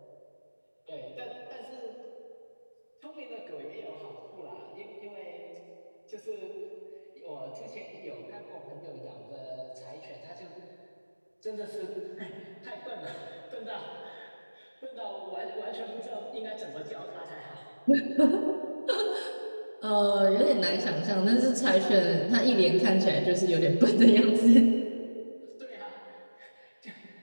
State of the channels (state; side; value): inverted; both; correlation -1.00